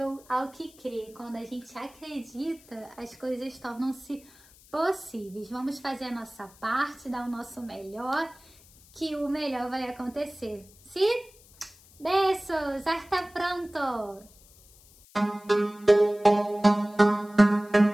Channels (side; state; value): left; noise; hiss, 26 dB below the sound